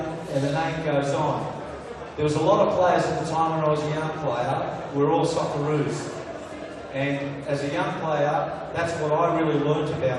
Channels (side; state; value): both; identical; correlation 1.00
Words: and the name goes on. There was a lot of players at the time when I was a young player, we were all Socceroos. And as a young player, that's what I really learnt